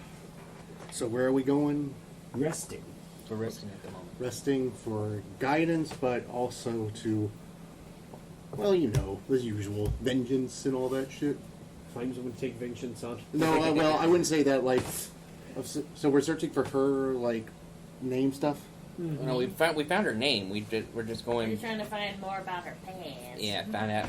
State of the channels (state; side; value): identical; both; correlation 1.00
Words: So where are we going? Resting. We're resting at the moment. Resting for guidance, but also to, well, the usual, vengeance and all that shit. Find someone to take vengeance on. No, well, I wouldn't say that, so we're searching for her, name stuff? No, we found her name. We're just We're going. trying to find more about her past. Yeah, find